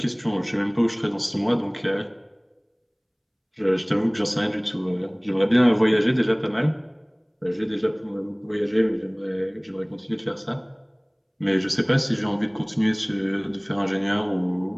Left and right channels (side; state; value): both; identical; correlation 1.00